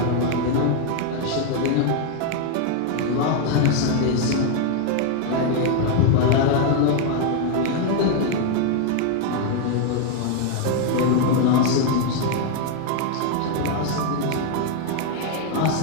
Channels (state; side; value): different; both; correlation 0.01